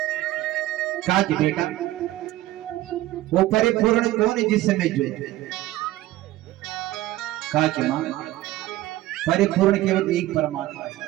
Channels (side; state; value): left; quieter; 16.1 dB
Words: कहा कि बेटा वो परिपूर्ण कौन है जिससे मैं जुड़े? कहा कि मां परिपूर्ण केवल एक परमात्मा है।